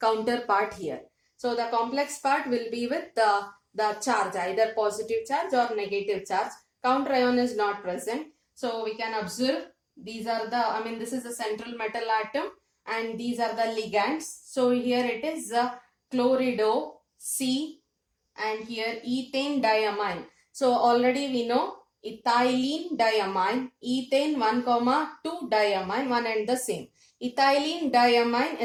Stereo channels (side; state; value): both; identical; correlation 1.00